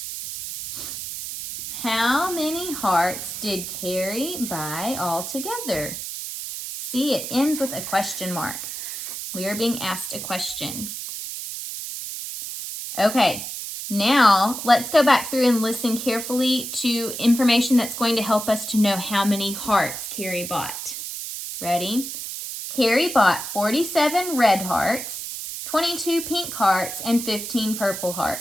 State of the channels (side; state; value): right; noise; hiss, 7 dB below the sound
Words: How many hearts did Carrie buy altogether? See, it ends with a question mark. We are being asked a question. Okay, now let's go back through and listen carefully to information that's going to help us to know how many hearts Carrie bought. Ready? Carrie bought 47 red hearts, 22 pink hearts, and 15 purple